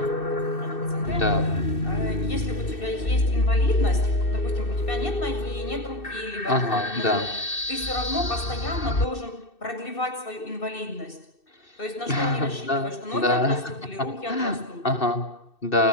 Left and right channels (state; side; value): late; right; 2.6 ms